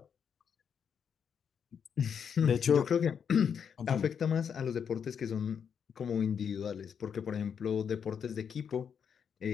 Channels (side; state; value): right; quieter; 7.4 dB